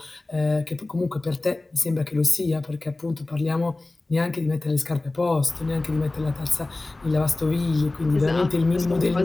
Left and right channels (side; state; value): right; quieter; 3.0 dB